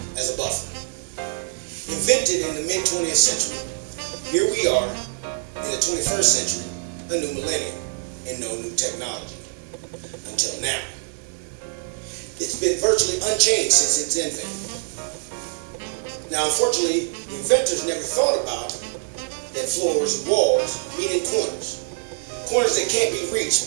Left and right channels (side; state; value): left; silent; 59 dB below the other